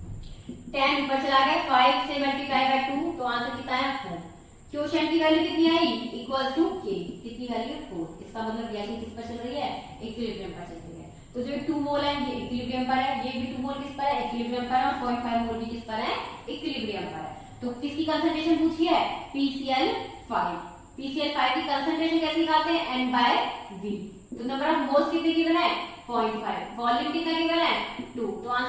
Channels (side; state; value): both; identical; correlation 1.00